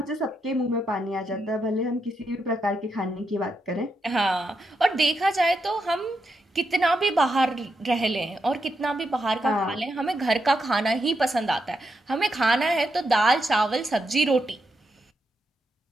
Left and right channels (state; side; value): normal; both; correlation 0.83